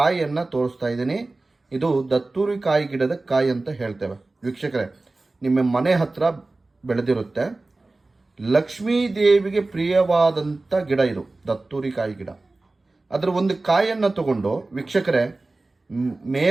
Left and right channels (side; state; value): left; quieter; 3.2 dB